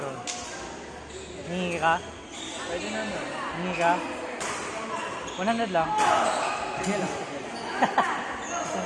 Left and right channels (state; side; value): identical; both; correlation 1.00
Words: Hingi ka? Pwede naman. Hingi ka? 100 lang. Sige lang. Saan